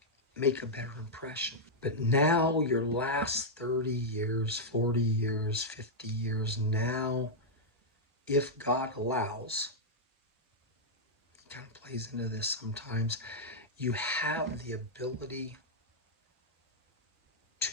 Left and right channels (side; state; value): both; normal; correlation -0.05